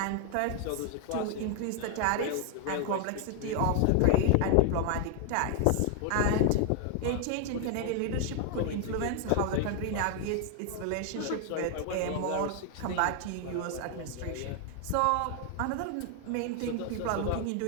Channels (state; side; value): different; both; correlation 0.00